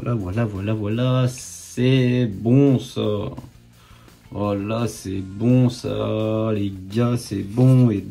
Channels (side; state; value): both; identical; correlation 1.00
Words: C'est bon, ça. Oh là, c'est bon, ça. Les gars, c'est bon. Et